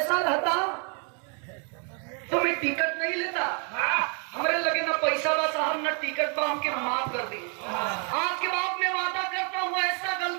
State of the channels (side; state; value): left; quieter; 38.6 dB